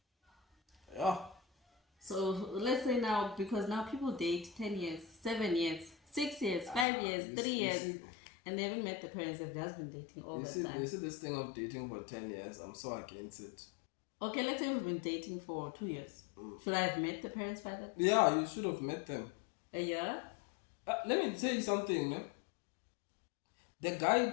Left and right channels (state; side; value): drops out; right; at 6.9 s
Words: Yeah. So let's say now, because now people date 10 years, 7 years, 6 years, 5 years, 3 years, and they haven't met the parents. They've just been dating all the time. You see this thing of dating for 10 years, I'm so against it. Okay, let's say we've been dating for 2 years. Should I have met the parents by that? Yeah, you should have met them. A year? Let me tell you something, man. The